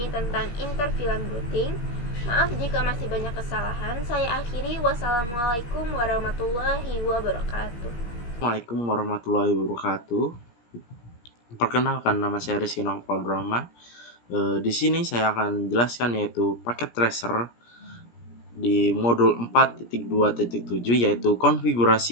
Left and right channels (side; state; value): right; late; 17 ms